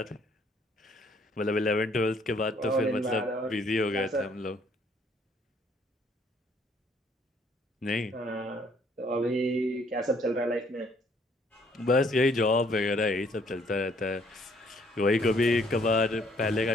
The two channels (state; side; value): normal; both; correlation 0.64